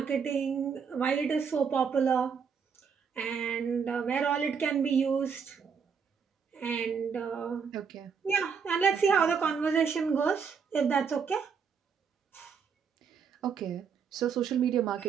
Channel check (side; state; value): left; quieter; 6.3 dB